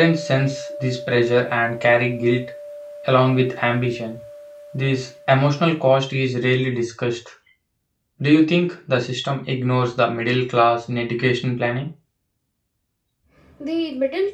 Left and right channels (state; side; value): identical; both; correlation 1.00